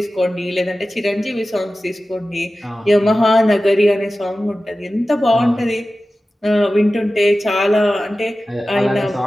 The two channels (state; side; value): normal; both; correlation 0.95